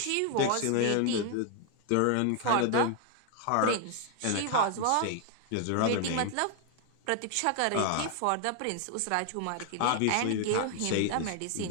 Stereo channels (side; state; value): both; different; correlation 0.00